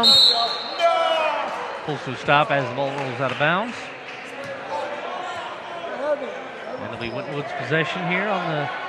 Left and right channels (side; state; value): both; identical; correlation 1.00